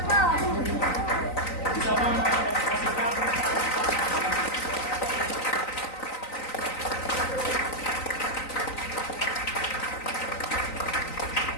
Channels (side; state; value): right; late; 3.9 ms